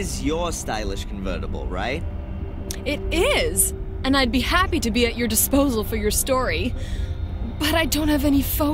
your stylish convertible, right? It is! And I'd be happy to be at your disposal for your story. But I don't have any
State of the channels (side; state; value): both; identical; correlation 1.00